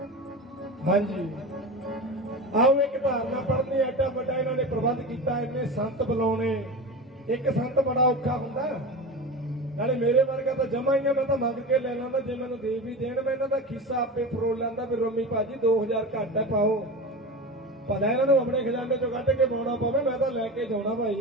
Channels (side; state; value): both; normal; correlation 0.27